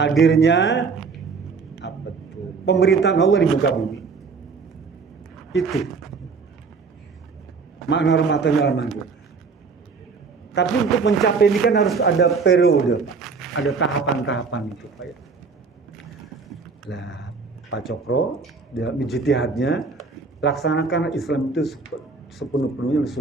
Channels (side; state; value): left; quieter; 4.8 dB